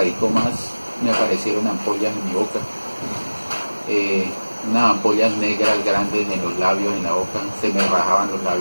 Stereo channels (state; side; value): inverted; both; correlation -1.00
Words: más, me aparecieron ampollas en mi boca, eh, unas ampollas negras grandes en los labios, en la boca, se me rajaban los